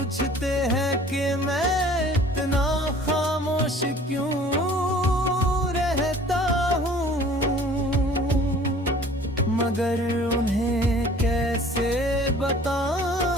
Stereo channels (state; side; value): normal; both; correlation 0.49